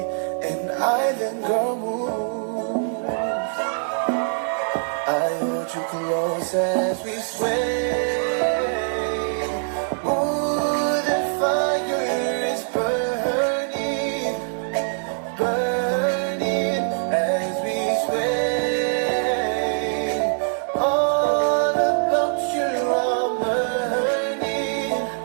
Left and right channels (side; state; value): left; silent; digital silence